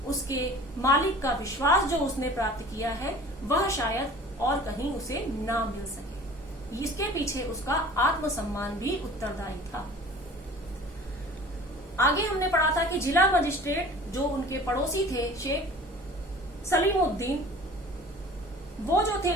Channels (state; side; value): normal; both; correlation 0.44